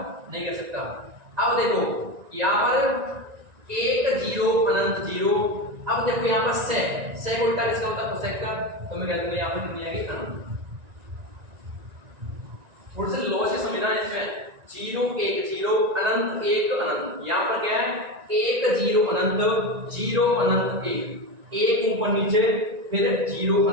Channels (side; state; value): left; late; 1.9 ms